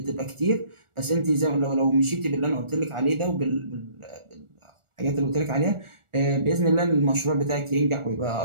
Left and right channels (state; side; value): late; left; 1.4 ms